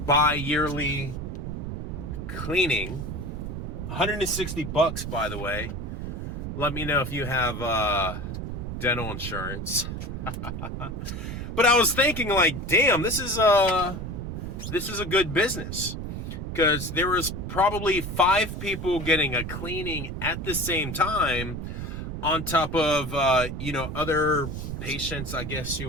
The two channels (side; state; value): right; noise; rumble, 5 dB below the sound